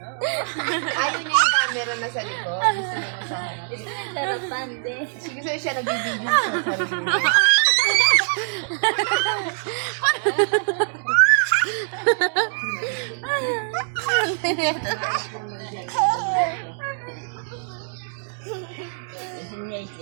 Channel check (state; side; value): silent; left; digital silence